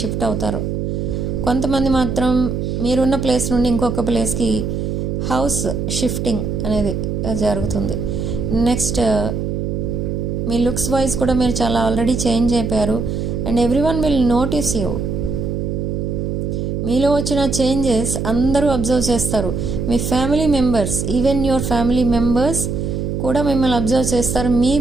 షిఫ్ట్ అవుతారు. కొంతమంది మాత్రం మీరున్న ప్లేస్ నుండి ఇంకొక ప్లేస్కి హౌస్ షిఫ్టింగ్ అనేది జరుగుతుంది. నెక్స్ట్ మీ లుక్స్ వైజ్ కూడా మీరు చాలా ఆల్రెడీ చేంజ్ అయిపోయారు. And everyone will notice you. మీలో వచ్చిన చేంజెస్ అందరూ అబ్జర్వ్ చేస్తారు. మీ family members, even your family members కూడా మిమ్మల్ని అబ్జర్వ్ చేస్తారు. మీ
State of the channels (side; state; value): right; noise; hum, 2 dB below the sound